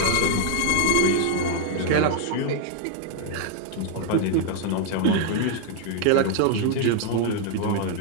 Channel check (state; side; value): different; both; correlation 0.00